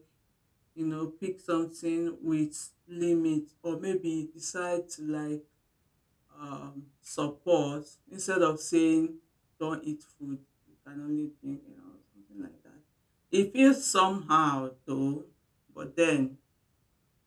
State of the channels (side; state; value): both; identical; correlation 1.00